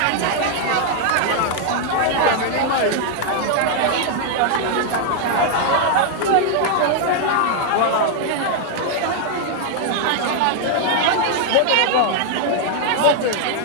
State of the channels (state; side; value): different; both; correlation 0.00